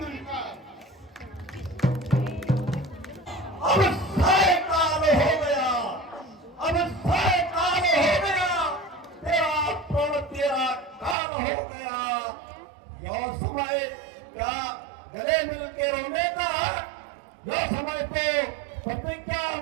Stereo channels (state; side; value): drops out; left; at 11.2 s